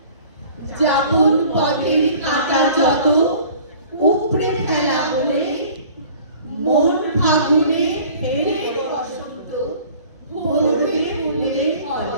যাপন পথের কাটা যত উপড়ে ফেলা হলে মন ফাগুনে ফের বসন্ত ভরবে ফুলে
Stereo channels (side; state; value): both; inverted; correlation -0.48